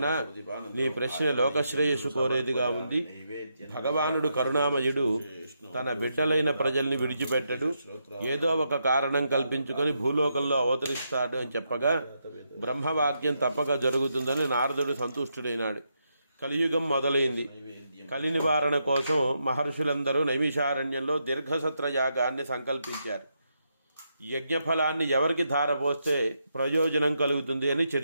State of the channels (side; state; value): both; inverted; correlation -0.81